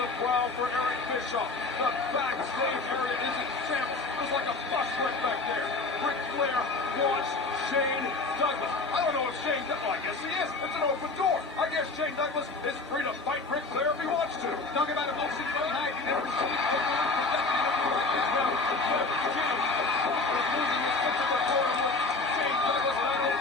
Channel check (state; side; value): quieter; right; 3.7 dB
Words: prowl for Eric Bischoff. The backstage area is in shambles. There's like a bus wreck back there. Ric Flair wants Shane Douglas. I don't know if Shane Douglas, well, I guess he is. It's an open door. I guess Shane Douglas is free to fight Ric Flair if he wants to. Talking about emotion tonight. You never see it. Shane Douglas, I don't